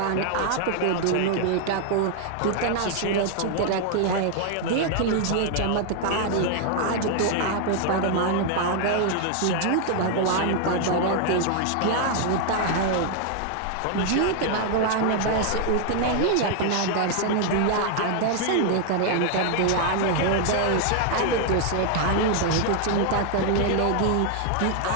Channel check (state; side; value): different; both; correlation 0.00